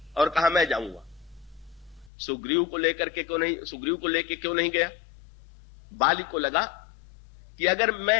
और कहा मैं जाऊंगा। सुग्रीव को लेकर के क्यों नहीं, सुग्रीव को लेकर क्यों नहीं गया? बाली को लगा कि अगर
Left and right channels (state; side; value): drops out; right; at 2.1 s